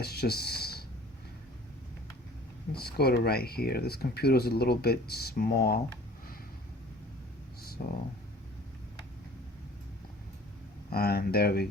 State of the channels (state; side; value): normal; both; correlation 0.48